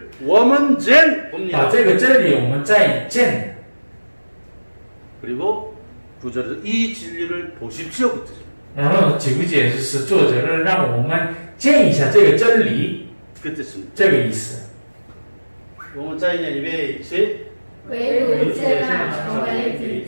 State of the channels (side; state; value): both; inverted; correlation -1.00